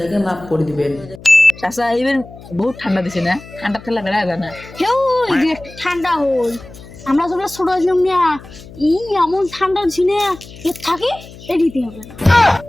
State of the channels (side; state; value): left; noise; hum, 18 dB below the sound